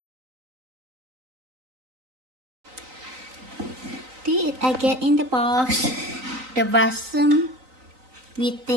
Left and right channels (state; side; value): late; left; 3.9 ms